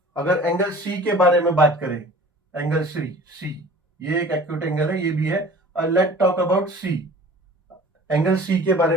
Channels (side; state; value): both; normal; correlation 0.44